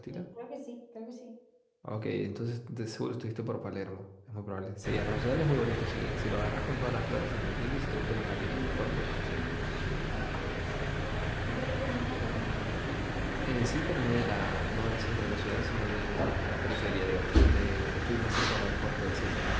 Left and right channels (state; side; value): identical; both; correlation 1.00